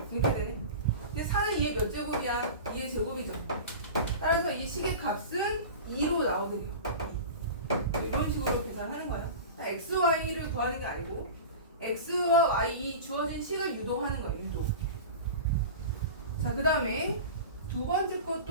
이렇게 되네. 근데 4는 2의 몇 제곱이야? 2의 제곱이죠. 따라서 이 식의 값은 2로 나오게 돼요. 이런 식으로 계산하는 거야. x, y를 구하는 게 아니고 x와 y 이 주어진 식을 유도하는 거예요. 유도. 자, 그 다음에 두 번째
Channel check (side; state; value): both; inverted; correlation -0.32